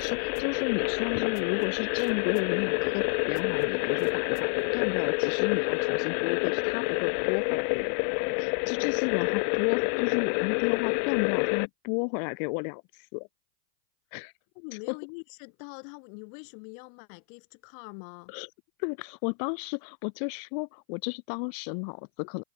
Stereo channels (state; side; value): silent; right; 59 dB below the other